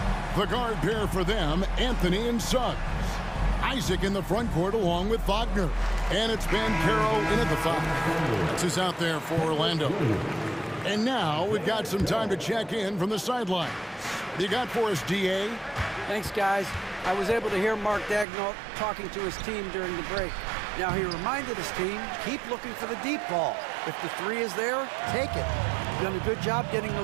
The guard pair for them, Anthony and Suggs. Isaac in the front court along with Wagner. And it's Banchero in at the foul. That's who's out there for Orlando. And now we've got some time to check in from the sidelines. You got for us, DA? Thanks, guys. I was able to hear Mark Daigneault talking to his team during the break. Now, he reminded his team, keep looking for the deep ball. If the 3 is there, take it. You've done a good job getting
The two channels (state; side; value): drops out; left; at 18.2 s